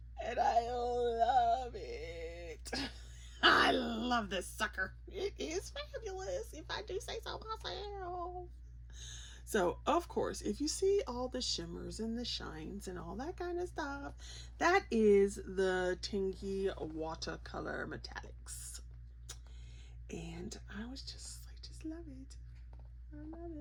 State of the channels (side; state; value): both; identical; correlation 1.00